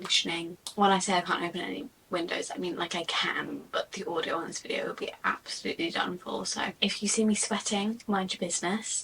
When I say I can't open any windows, I mean like I can, but the audio on this video will be absolutely done for. So if you see me sweating, mind your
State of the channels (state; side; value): identical; both; correlation 1.00